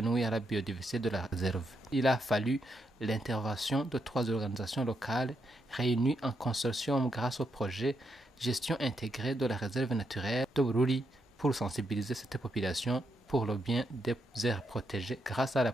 nuire à la biodiversité de la réserve. Il a fallu l'intervention de 3 organisations locales réunies en consortium grâce au projet Gestion intégrée de la réserve naturelle de Bururi pour sensibiliser cette population pour le bien des aires protégées grâce à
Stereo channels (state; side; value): normal; both; correlation 0.81